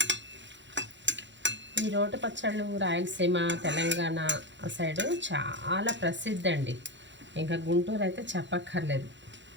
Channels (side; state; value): left; late; 0.53 ms